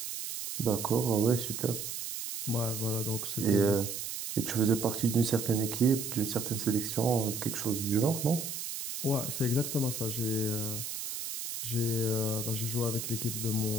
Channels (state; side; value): noise; right; hiss, 5 dB below the sound